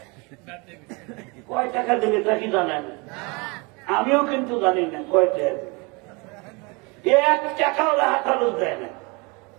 কয় টাকা দেবে তা কি জানেন? আমিও কিন্তু জানি না কয় টাকা দেবে। 1 টাকাও হাতালো দেয় না।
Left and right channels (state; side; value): quieter; left; 28.6 dB